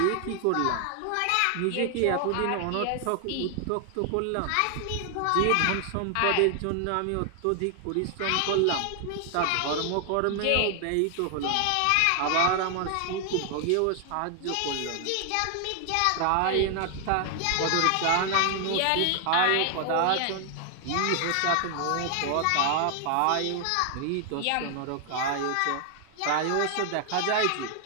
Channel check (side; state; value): both; different; correlation 0.00